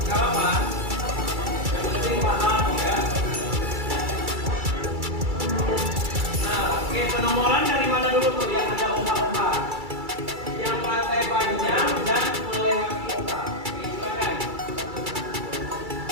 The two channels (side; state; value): left; late; 2.3 ms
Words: nggak apa-apa. Yang penting paham ya. Nah, oke, penomoran dari mana dulu tuh yang ada opa-opa? Yang lantai panjang dan melewati opa. Oke, silakan.